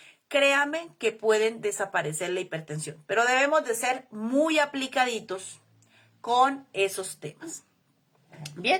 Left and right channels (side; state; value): both; identical; correlation 1.00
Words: créanme que pueden desaparecer la hipertensión, pero debemos de ser muy aplicaditos con esos temas.